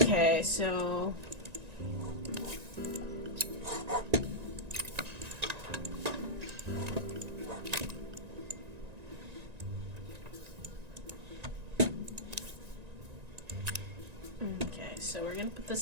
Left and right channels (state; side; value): late; left; 1.9 ms